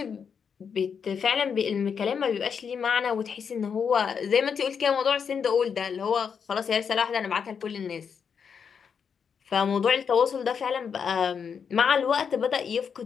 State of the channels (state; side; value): quieter; right; 6.7 dB